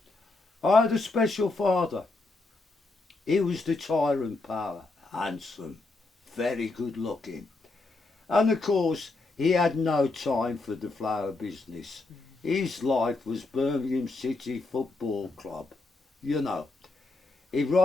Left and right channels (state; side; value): quieter; right; 3.4 dB